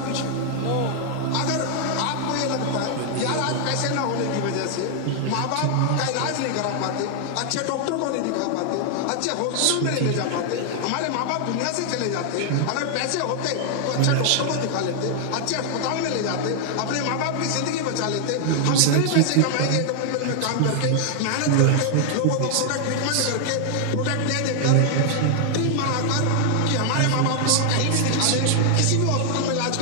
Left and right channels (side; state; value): both; different; correlation 0.00